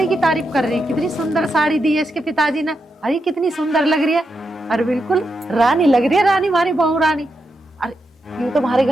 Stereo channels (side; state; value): both; normal; correlation 0.85